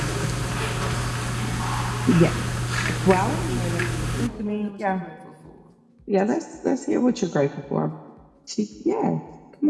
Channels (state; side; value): identical; both; correlation 1.00